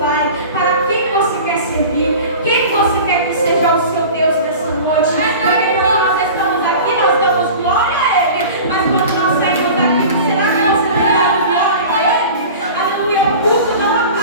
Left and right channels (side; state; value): both; inverted; correlation -0.38